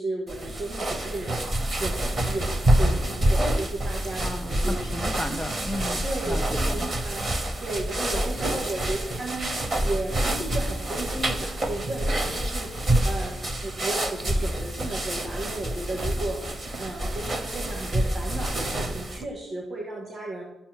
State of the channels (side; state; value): both; normal; correlation 0.88